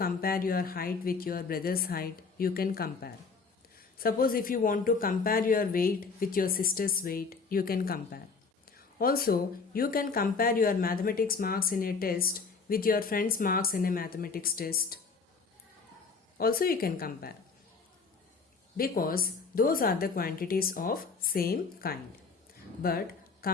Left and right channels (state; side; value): quieter; right; 4.8 dB